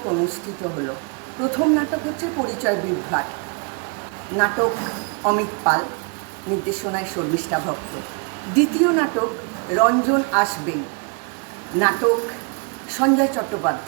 অনুষ্ঠিত হলো। প্রথম নাটক হচ্ছে পরিচয় বিভ্রাট, নাটক অমিত পাল, নির্দেশনায় শর্মিষ্ঠা ভক্ত। দ্বিতীয় নাটক রঞ্জন আসবেই, নাটক সঞ্জয়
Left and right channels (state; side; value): quieter; left; 36.2 dB